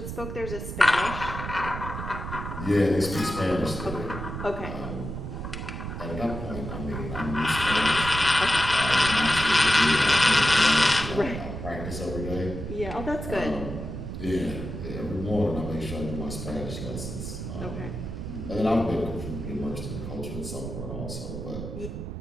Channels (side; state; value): right; noise; rumble, 7 dB below the sound